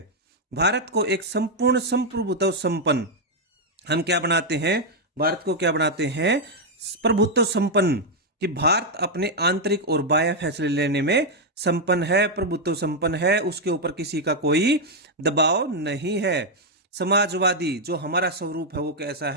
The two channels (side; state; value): both; normal; correlation 0.00